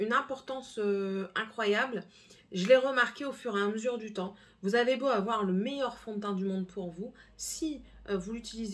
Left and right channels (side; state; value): both; identical; correlation 1.00